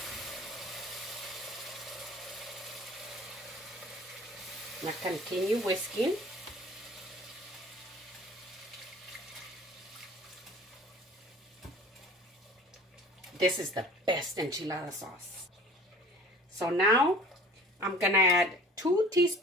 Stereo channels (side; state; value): both; normal; correlation 0.46